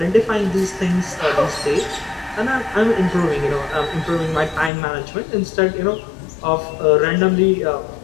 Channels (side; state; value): right; drops out; at 4.7 s